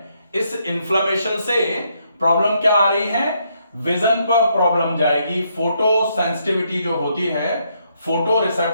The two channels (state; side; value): inverted; both; correlation -0.75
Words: इस इन्फ्लेमेशन से प्रॉब्लम क्या आ रही है? विजन पर प्रॉब्लम जाएगी। फोटो सेंसिटिविटी जो होती है, फोटो